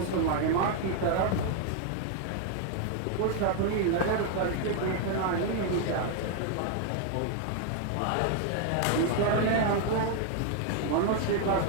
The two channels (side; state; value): both; different; correlation 0.00